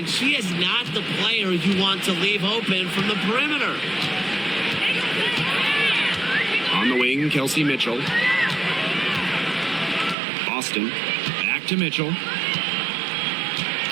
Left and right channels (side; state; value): left; drops out; at 10.2 s